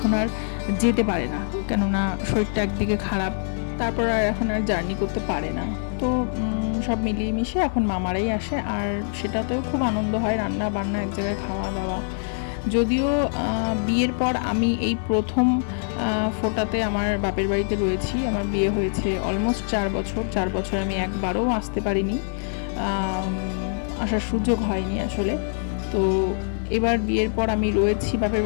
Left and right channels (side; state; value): right; silent; digital silence